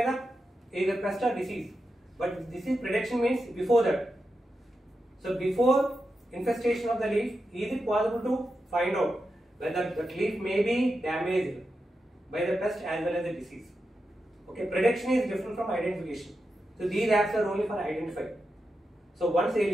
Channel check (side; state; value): both; normal; correlation 0.88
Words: the either pest or disease. But disease prediction means before that. So before infestation of the leaf, is it possible to find out whether the leaf may be damaged by the pest as well as the disease? Okay, prediction is different from identification. So these apps are only for identifying. So once a